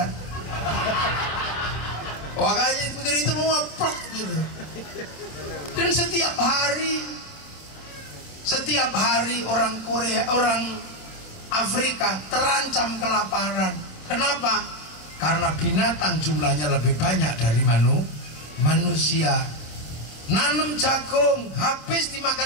Makanya dibikin itu mau plek gitu. Dan setiap hari orang Korea, orang Afrika terancam kelaparan. Kenapa? Karena binatang jumlahnya lebih banyak dari manusia. Nanam jagung habis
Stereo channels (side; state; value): right; late; 26 ms